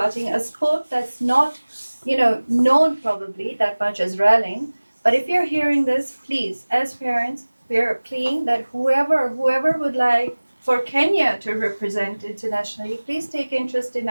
a sport that's not, known probably that much as rallying. But if you're hearing this, please, as parents, we're pleading that whoever would like for Kenya to represent internationally, please take interest in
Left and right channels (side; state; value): both; inverted; correlation -1.00